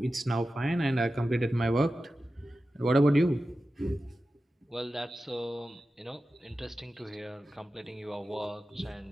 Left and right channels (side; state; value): both; normal; correlation 0.93